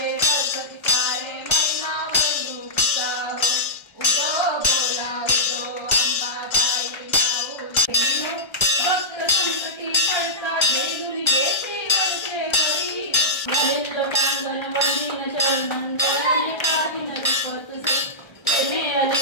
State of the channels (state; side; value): late; right; 1.3 ms